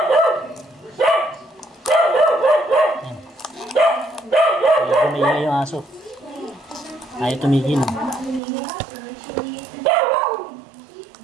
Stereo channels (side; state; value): left; drops out; at 8.4 s